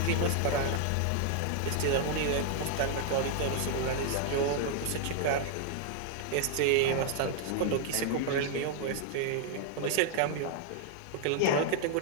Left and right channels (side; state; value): both; different; correlation 0.00